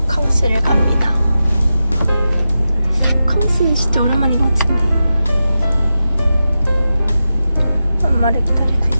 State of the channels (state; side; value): inverted; both; correlation -0.91